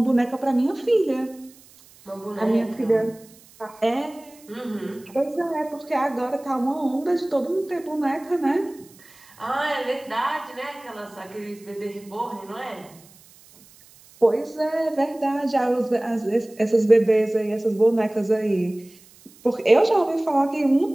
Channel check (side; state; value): right; noise; hiss, 25 dB below the sound